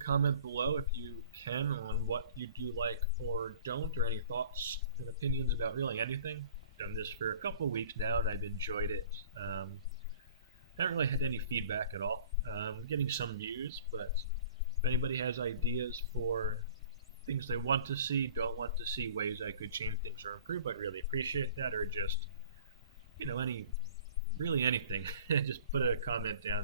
below if you can on what you do like or don't, or any thoughts and opinions about really anything. I've done this for a couple of weeks now and I've enjoyed it. Haven't really had any feedback at all. Getting some views, but if anybody has ideas for things they want to see, don't want to see, ways I could change things or improve, I'd really appreciate that. Or just, really anything. Just put a comment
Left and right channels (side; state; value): both; inverted; correlation -0.48